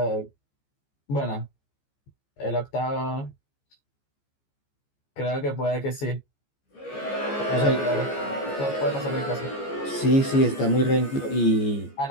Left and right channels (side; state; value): right; late; 14 ms